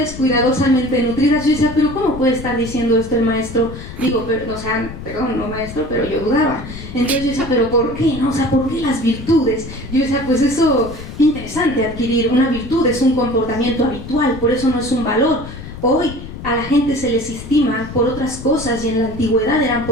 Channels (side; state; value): left; noise; rumble, 12 dB below the sound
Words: cuidadosamente nutridas. Yo decía, pero ¿cómo puede estar diciendo esto el maestro? Digo, pero, o sea, perdón, no maestro, pero yo dudaba. Entonces yo decía, pero ¿por qué? ¿No? O sea, ¿por qué las virtudes? Yo decía, pues eso, interesante adquirir una virtud, es un comportamiento habitual, por eso no es un valor. Hoy a la gente se les estima por otras cosas y en la antigüedad eran